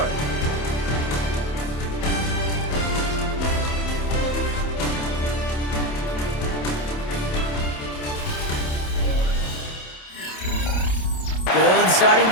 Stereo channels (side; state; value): right; late; 27 ms